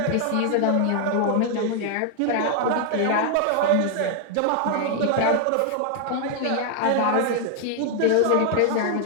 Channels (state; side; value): different; both; correlation 0.00